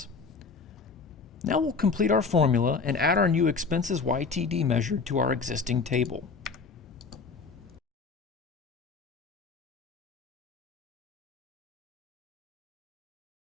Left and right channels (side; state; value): right; quieter; 4.8 dB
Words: Now we'll complete our formula and add our new expenses YTD measure to our existing table.